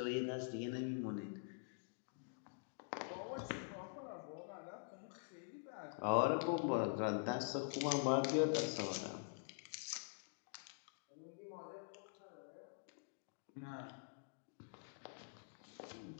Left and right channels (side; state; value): right; silent; digital silence